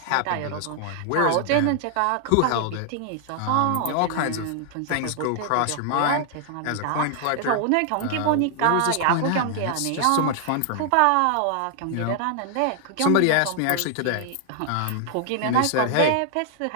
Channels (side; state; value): both; different; correlation 0.00